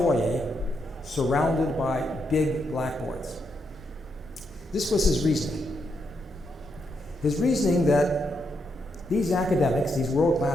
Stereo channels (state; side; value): normal; both; correlation 0.80